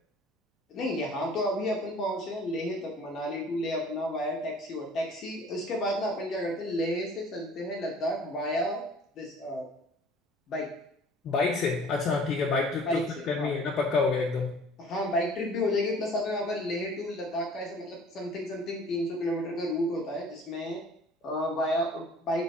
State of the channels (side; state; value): both; normal; correlation 0.50